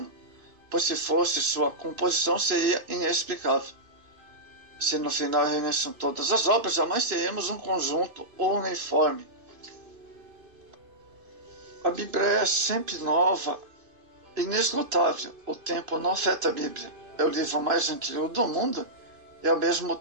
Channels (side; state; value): left; late; 2.9 ms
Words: pois se fosse, sua composição seria inexplicável. Se no final reunissem todas as obras, jamais teríamos um conjunto uniforme. A Bíblia é sempre nova, inesgotável. O tempo não afeta a Bíblia. É o livro mais antigo do mundo e ao mesmo